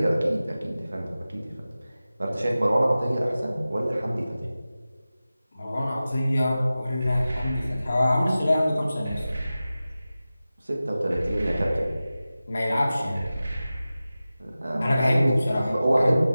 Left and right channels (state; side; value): inverted; both; correlation -0.96